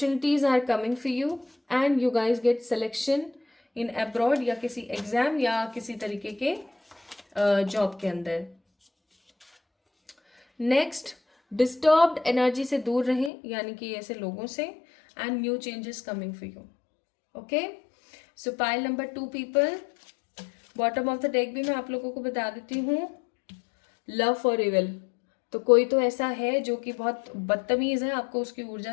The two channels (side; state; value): right; drops out; at 13.3 s